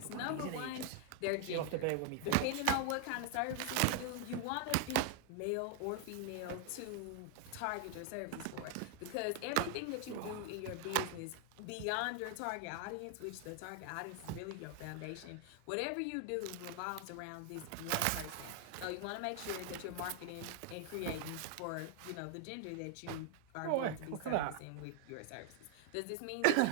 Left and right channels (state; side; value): different; both; correlation 0.00